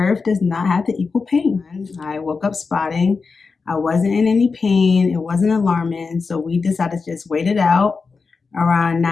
does not have to equal pain. I woke up spotting. I wasn't in any pain. It wasn't alarming. So we decided to just wait it out. Around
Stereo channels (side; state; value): right; quieter; 4.7 dB